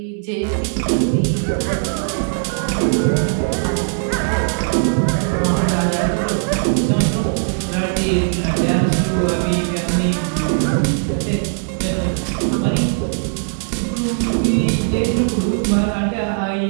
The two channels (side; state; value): left; silent; digital silence